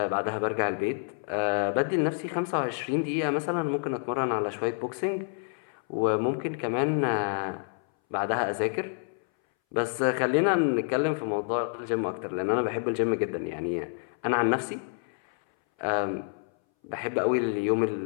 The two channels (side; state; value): right; silent; 59 dB below the other